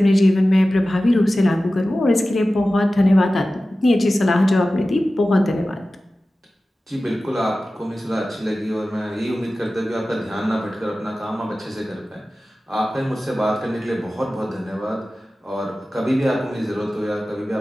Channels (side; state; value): both; normal; correlation 0.95